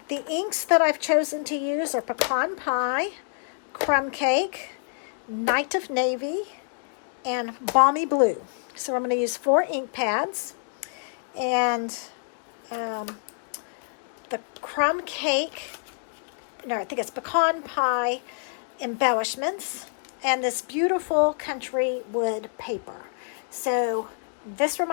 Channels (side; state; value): right; silent; digital silence